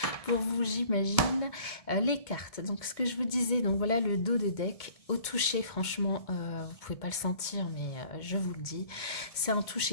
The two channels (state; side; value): late; right; 1.7 ms